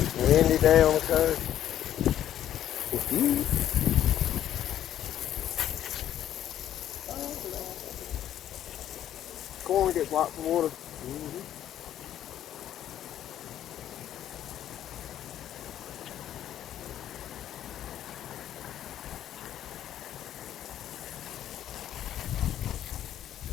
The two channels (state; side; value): quieter; right; 11.3 dB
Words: windy day on the coast. Corn gets lots of water.